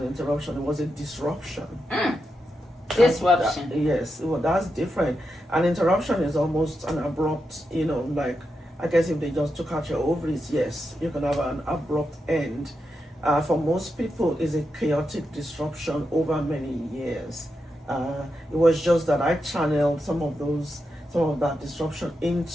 interruption. It was a disruption. Disruption. Yes, well, that's different. An interruption is almost an abrupt, like, I guess if they just took out your ovaries, yes, you can have an abrupt end. For most people, it's a chaotic disruption over many years. It was just that I channeled some of that disruption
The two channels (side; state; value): both; normal; correlation 0.86